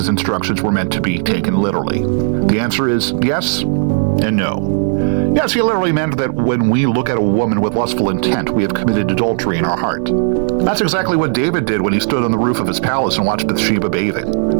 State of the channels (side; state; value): left; silent; digital silence